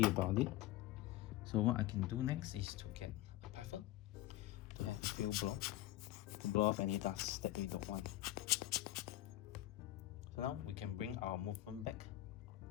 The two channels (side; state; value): right; quieter; 15.4 dB